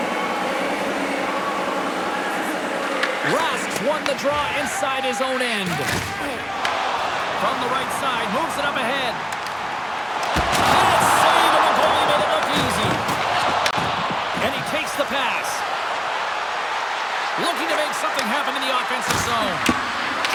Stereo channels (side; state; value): both; identical; correlation 1.00